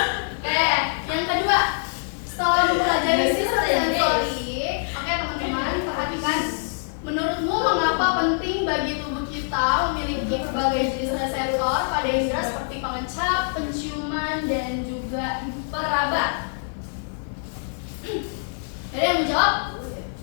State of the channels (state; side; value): silent; right; digital silence